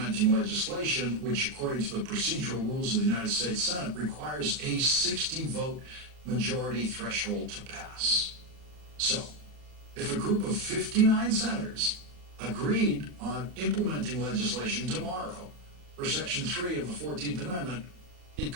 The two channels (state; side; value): late; left; 40 ms